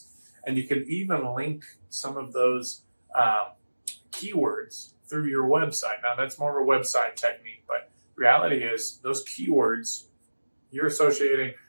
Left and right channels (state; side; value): inverted; both; correlation -1.00